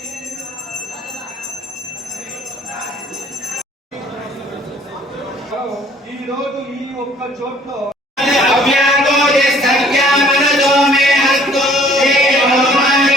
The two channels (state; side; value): normal; both; correlation 0.57